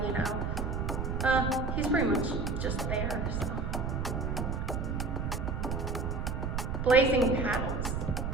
you know, he's pretty much just there. So. Blazing Paddles.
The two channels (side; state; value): right; noise; rumble, 1 dB below the sound